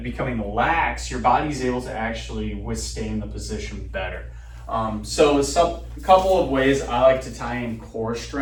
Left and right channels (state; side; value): identical; both; correlation 1.00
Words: becoming lax, your body's able to actually withstand the position better. So a couple of ways I like to tie in core